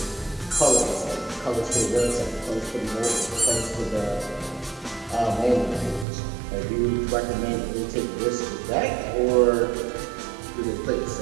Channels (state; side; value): drops out; left; at 6.1 s